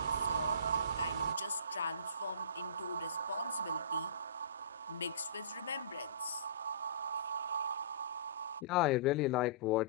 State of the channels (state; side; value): inverted; both; correlation -0.34